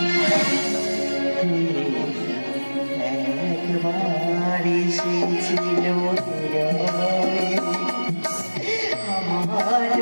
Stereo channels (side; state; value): both; inverted; correlation -1.00